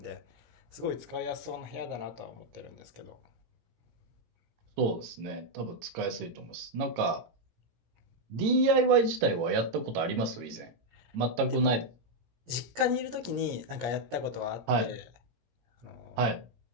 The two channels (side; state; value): left; late; 18 ms